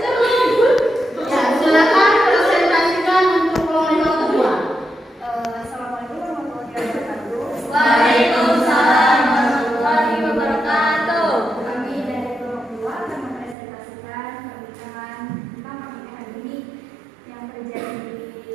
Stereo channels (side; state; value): left; drops out; at 13.6 s